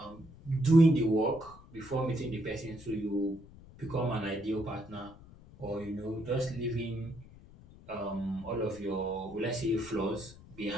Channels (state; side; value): noise; left; rumble, 20 dB below the sound